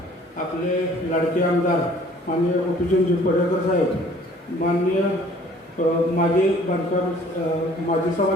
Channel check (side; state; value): both; normal; correlation 0.54